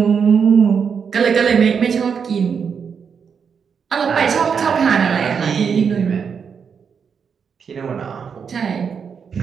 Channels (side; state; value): left; quieter; 6.5 dB